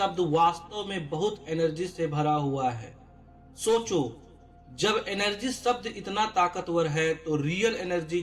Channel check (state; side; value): identical; both; correlation 1.00